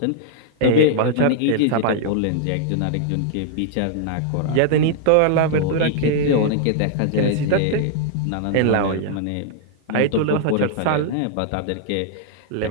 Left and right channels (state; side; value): different; both; correlation 0.00